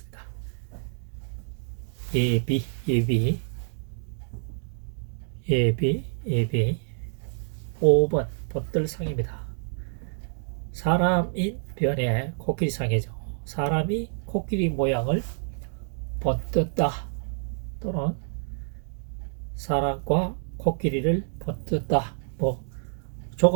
예비, 예비, 예비, 예비. 5번 번들상입니다. 사람인 변에 코끼리상이죠. 사람이 코끼리 모양을 번뜬다 또는 사람과 코끼리를 번뜬다,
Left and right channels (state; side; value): silent; left; digital silence